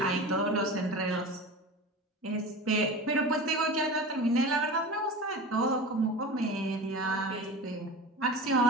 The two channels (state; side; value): normal; both; correlation 0.31